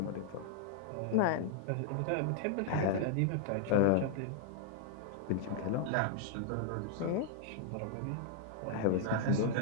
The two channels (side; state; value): both; different; correlation 0.00